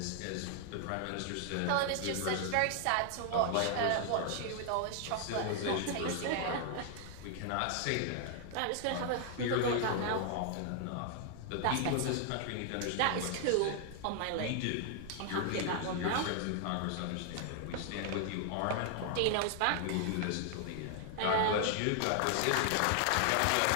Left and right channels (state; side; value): different; both; correlation 0.00